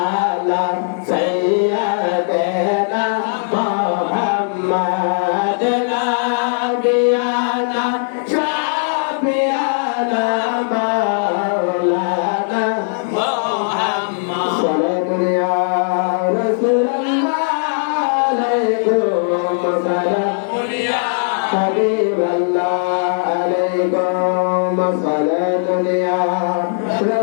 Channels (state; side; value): silent; right; digital silence